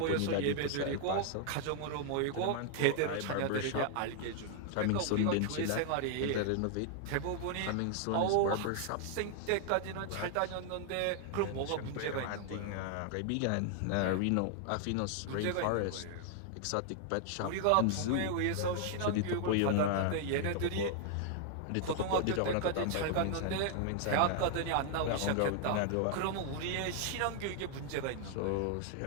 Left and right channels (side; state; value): both; different; correlation 0.00